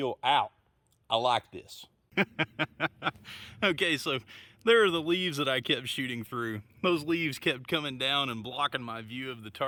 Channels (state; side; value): identical; both; correlation 1.00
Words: out. I like this. Okay, so there are the leaves that I kept shooting through. Those leaves kept coming down and blocking my view of the